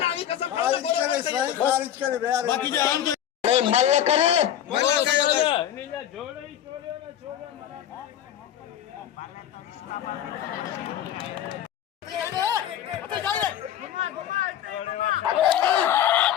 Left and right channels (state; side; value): quieter; right; 10.8 dB